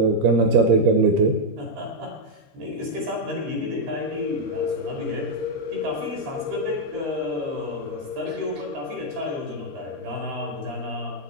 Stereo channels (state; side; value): late; left; 13 ms